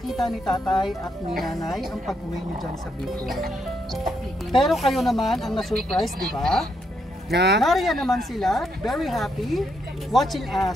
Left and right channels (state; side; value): normal; both; correlation 0.78